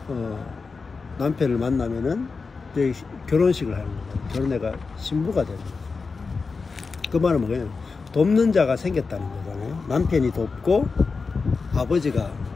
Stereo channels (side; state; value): right; quieter; 4.5 dB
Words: 남편을 만나면은 이제 결혼식을 하는 거예요. 결혼해가 신부가 되는 거예요. 그 말은 뭐예요? 돕는 자가 생겼다는 거잖아요. 남편이 돕고 아버지가,